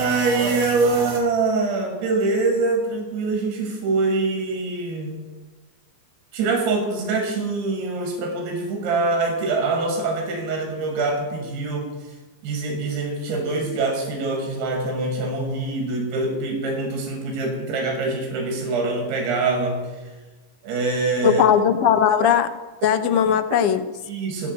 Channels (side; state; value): left; late; 15 ms